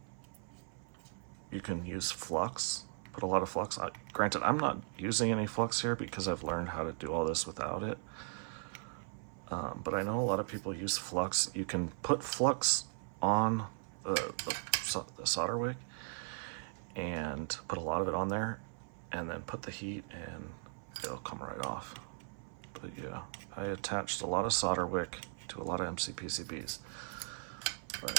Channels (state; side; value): silent; left; 52 dB below the other